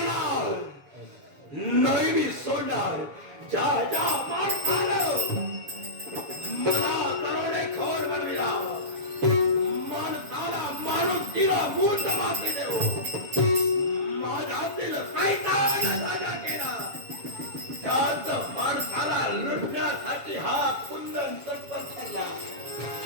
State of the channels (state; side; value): late; left; 7.1 ms